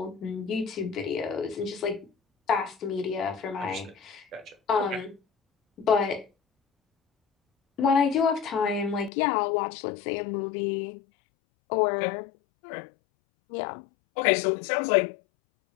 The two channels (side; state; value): right; drops out; at 9.1 s